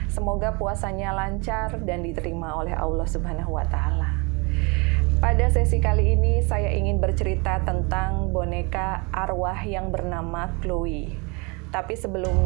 Semoga puasanya lancar dan diterima oleh Allah Subhanahu wa Ta'ala. Pada sesi kali ini saya ingin bercerita tentang boneka arwah yang bernama Chloe. Tapi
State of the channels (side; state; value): left; quieter; 29.7 dB